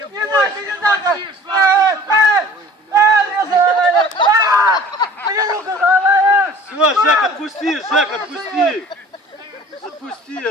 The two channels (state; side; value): normal; both; correlation 0.47